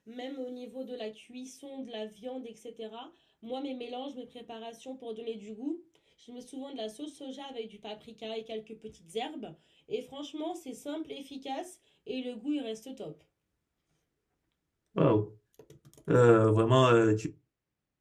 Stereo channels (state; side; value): identical; both; correlation 1.00